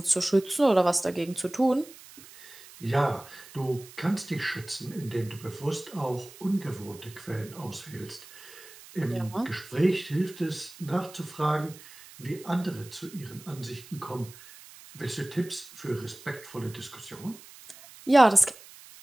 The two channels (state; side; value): noise; right; hiss, 19 dB below the sound